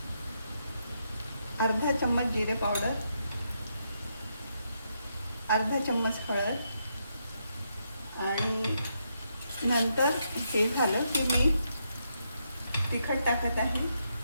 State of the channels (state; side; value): inverted; both; correlation -0.80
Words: अर्धा चम्मच जिरे पावडर, अर्धा चम्मच हळद आणि नंतर हे झालं की मी तिखट टाकत आहे